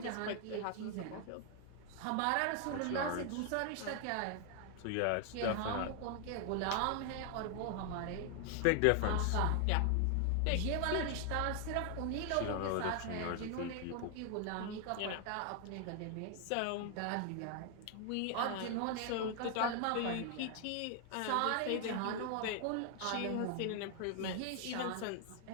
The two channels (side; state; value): both; different; correlation 0.00